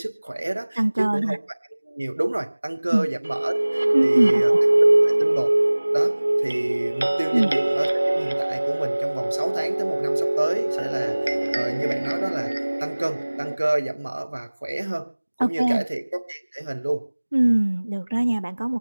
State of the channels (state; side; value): inverted; both; correlation -1.00